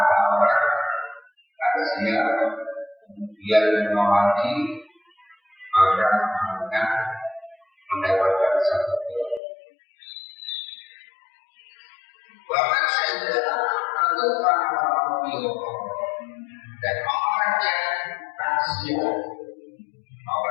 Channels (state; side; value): drops out; right; at 9.4 s